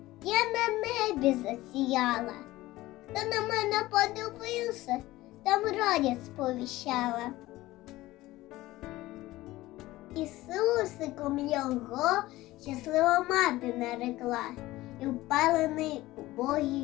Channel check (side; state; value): right; quieter; 17.6 dB